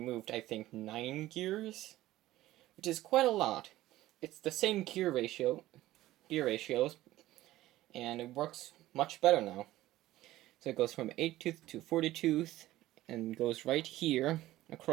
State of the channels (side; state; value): left; quieter; 15.8 dB